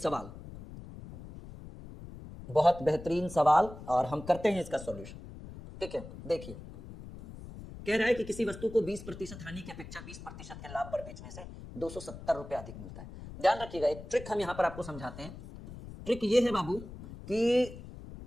बहुत बेहतरीन सवाल, और हम करते हैं इसका सॉल्यूशन, ठीक है। देखिए कह रहा है कि किसी वस्तु को 20% हानि की अपेक्षा 20% के लाभ पर बेचने से ₹270 अधिक मिलता है। ध्यान रखिएगा, एक ट्रिक हम यहां पर आपको समझाते हैं। ट्रिक ये है बाबू कि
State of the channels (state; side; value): noise; left; rumble, 13 dB below the sound